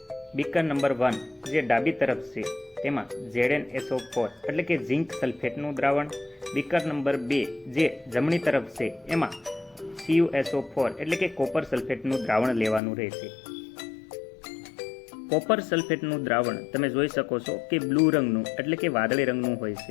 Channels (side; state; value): right; drops out; at 12.8 s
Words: બીકર નંબર 1 જે ડાબી તરફ છે તેમાં ZnSO4 એટલે કે ઝિંક સલ્ફેટનું દ્રાવણ. બીકર નંબર 2 જે જમણી તરફ છે એમાં CuSO4 એટલે કે કોપર સલ્ફેટનું દ્રાવણ લેવાનું રહેશે. કોપર સલ્ફેટનું દ્રાવણ તમે જોઈ શકો છો કે બ્લુ રંગનું એટલે કે વાદળી રંગનું હોય